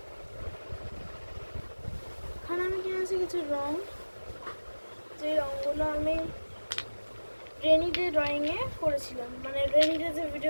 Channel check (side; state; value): both; inverted; correlation -1.00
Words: এখানে আমি কিনেছি কিছু রং, যে রঙগুলো আমি রেনি ডে ড্রয়িংয়ে করেছিলাম, মানে রেনি ডে যে